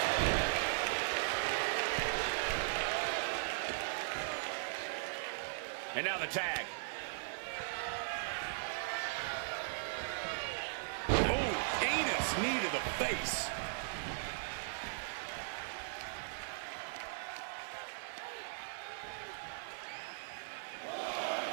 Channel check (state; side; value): silent; left; digital silence